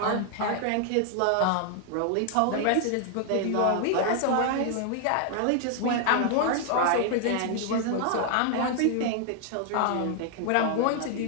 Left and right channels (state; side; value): different; both; correlation 0.00